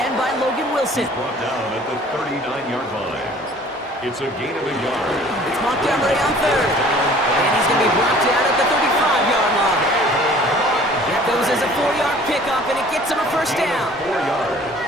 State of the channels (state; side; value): normal; both; correlation 0.51